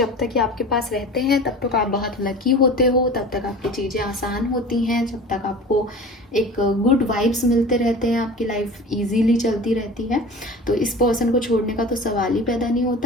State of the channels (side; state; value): both; normal; correlation 0.37